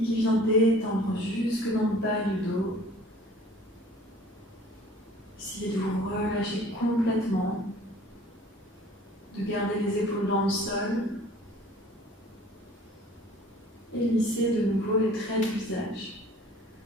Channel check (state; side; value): normal; both; correlation 0.50